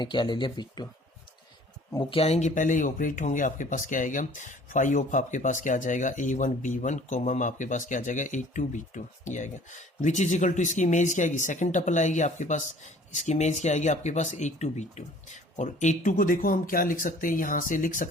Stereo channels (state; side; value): normal; both; correlation 0.52